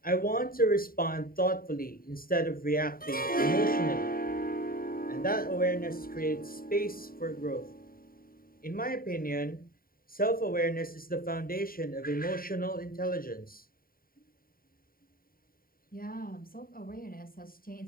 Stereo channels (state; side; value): late; right; 0.42 ms